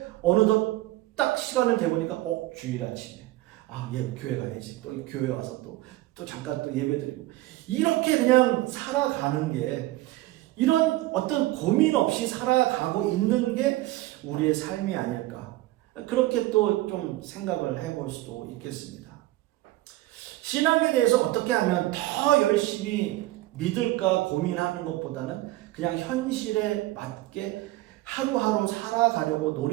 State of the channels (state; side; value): quieter; left; 17.4 dB